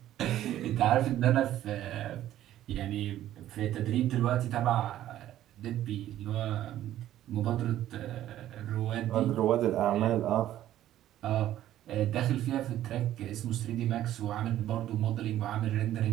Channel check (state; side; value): quieter; left; 12.8 dB